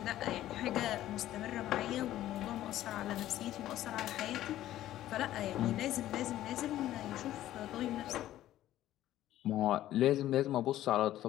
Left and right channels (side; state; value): right; quieter; 13.6 dB